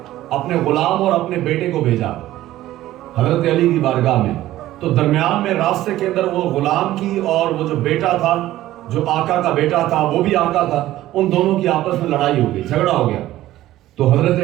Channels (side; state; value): left; quieter; 14.8 dB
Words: اپنے غلام اور اپنے بیٹے کو بھیجا حضرت علی کی بارگاہ میں. تو درمیان میں راستے کے اندر وہ غلام کی اور وہ جو بیٹا تھا، جو آقا کا بیٹا تھا، وہ بھی آقا تھا، ان دونوں کی آپس میں لڑائی ہو گئی، جھگڑا ہو گیا. تو